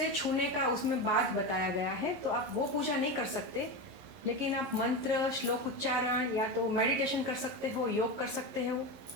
छूने का उसमें बात बताया गया है, तो आप वो पूजा नहीं कर सकते, लेकिन आप मंत्र श्लोक उच्चारण या तो मेडिटेशन कर सकते हो, योग कर सकते हो,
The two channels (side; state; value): left; late; 11 ms